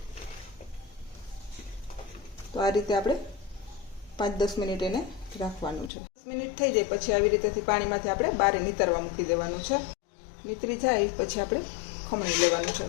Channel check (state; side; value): drops out; right; at 5.9 s